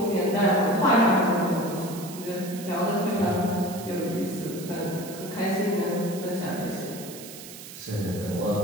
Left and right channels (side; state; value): right; noise; hiss, 14 dB below the sound